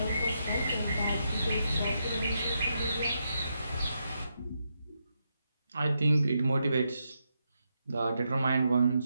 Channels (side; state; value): both; inverted; correlation -0.83